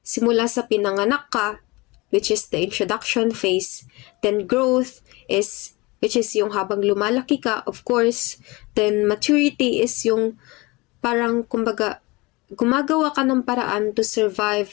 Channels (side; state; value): right; quieter; 23.8 dB